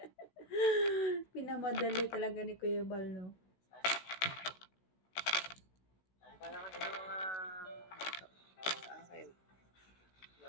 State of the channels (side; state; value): right; late; 16 ms